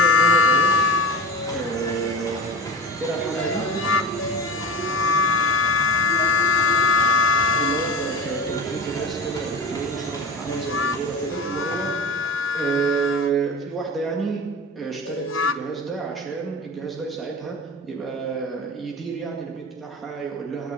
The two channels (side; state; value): both; normal; correlation 0.31